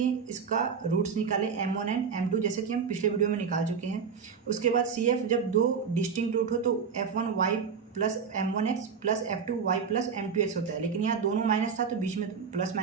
इसका रूट्स निकाले m1 एंड m2, जैसे कि हम पिछले वीडियो में निकाल चुके हैं। उसके बाद CF जब दो डिस्टिंक्ट रूट हो तो f1y plus m1x plus f2y plus m2x होता है, लेकिन यहाँ दोनों माइनस था तो बीच में प्लस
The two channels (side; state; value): left; quieter; 6.2 dB